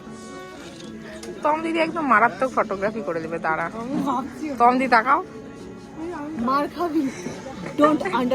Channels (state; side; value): identical; both; correlation 1.00